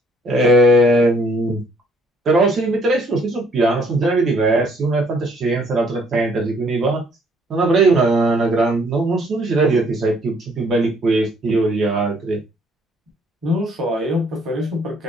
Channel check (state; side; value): normal; both; correlation 0.63